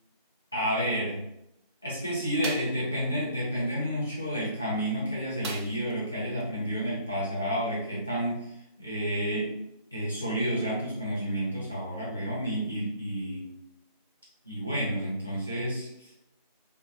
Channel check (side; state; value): both; inverted; correlation -0.58